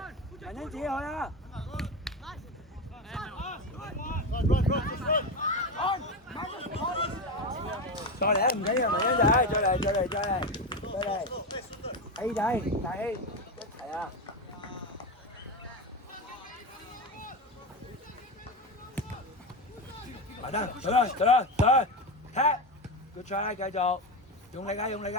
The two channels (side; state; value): both; normal; correlation 0.16